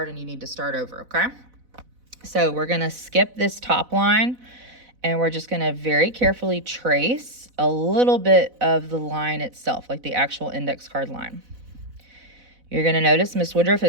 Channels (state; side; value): late; left; 4.0 ms